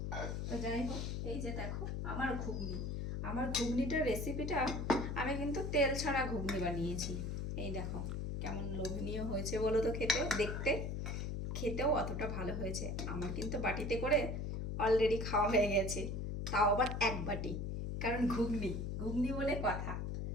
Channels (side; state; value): left; noise; hum, 3 dB below the sound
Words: তো যাই হোক, এই যে দেখো আমার ঘুগনি, আমার ঘুগনিটার রেসিপিটা আমি কিন্তু তেল ছাড়া ঘুগনি বানিয়েছি। এই দেখো কেমন লোভনীয় হয়েছে বলো তো, খেতে, দেখতে, খেতেও অতটা ভালো হয়েছে। আমার কিন্তু বাটিতে করে অলরেডি খাওয়া হয়ে গেছে, তাও আবার এক বাটি, কারণ ঘুগনি ঘুগনি বলে কথা।